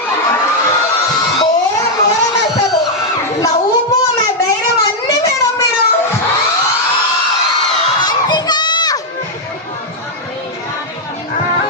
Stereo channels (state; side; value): normal; both; correlation -0.02